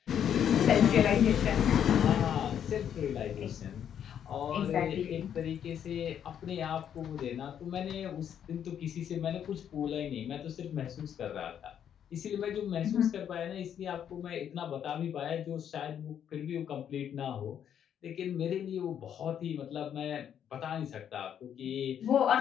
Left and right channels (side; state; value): right; quieter; 9.1 dB